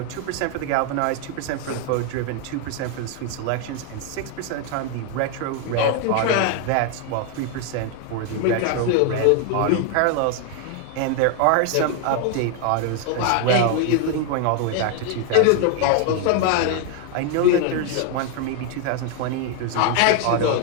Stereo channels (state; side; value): different; both; correlation 0.01